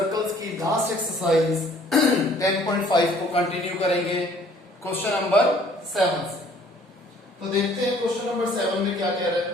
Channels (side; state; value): both; normal; correlation 0.57